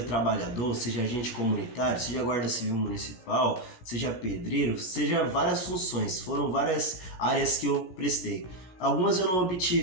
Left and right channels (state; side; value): late; right; 16 ms